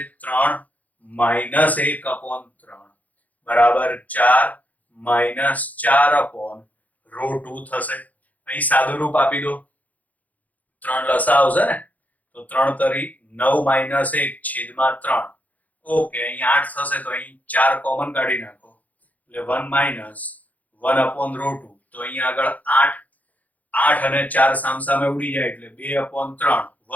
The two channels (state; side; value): late; right; 0.077 ms